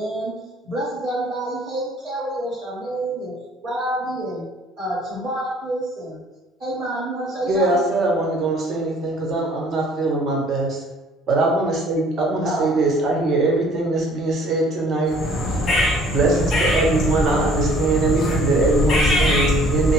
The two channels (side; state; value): both; normal; correlation 0.56